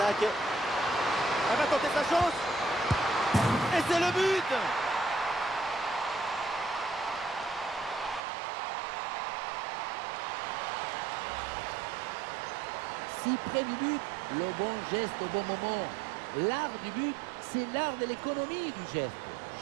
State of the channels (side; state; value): left; drops out; at 8.2 s